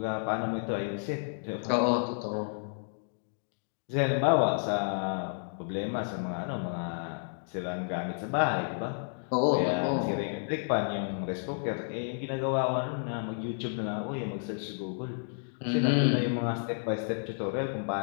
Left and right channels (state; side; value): silent; right; digital silence